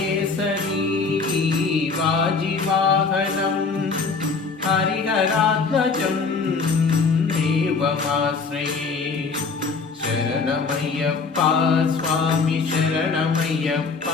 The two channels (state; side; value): quieter; right; 4.7 dB